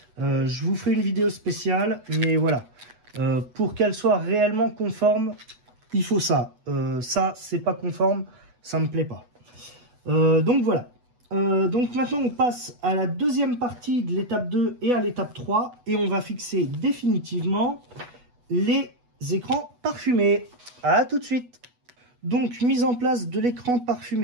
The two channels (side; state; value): left; late; 8.1 ms